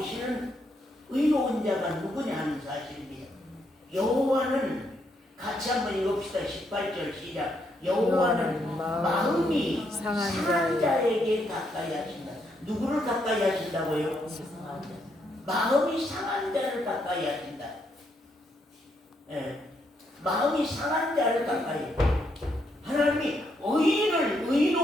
의로운 자가 누구냐 하는 사실입니다. 여호와는 같이 한번 읽읍시다. 18절 시작. 여호와는 마음이 상한 자에게 가까이 하신다. 누구를 가까이 하신다고요? 마음이 상한 자를 가까이 하신다. 마음이 상한 자를 가까이. 하나님이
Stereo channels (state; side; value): normal; both; correlation 0.76